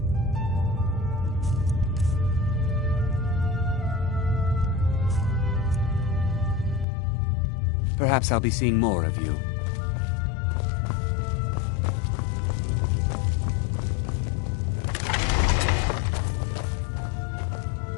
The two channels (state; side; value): drops out; right; at 6.9 s